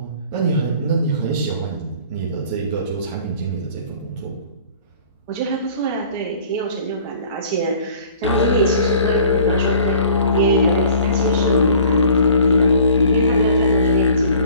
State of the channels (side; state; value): both; inverted; correlation -0.51